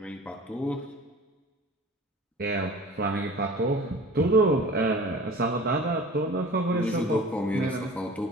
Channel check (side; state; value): both; normal; correlation 0.42